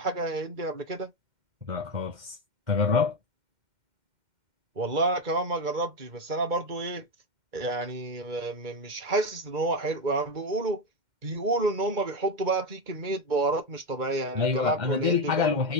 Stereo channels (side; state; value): left; late; 2.1 ms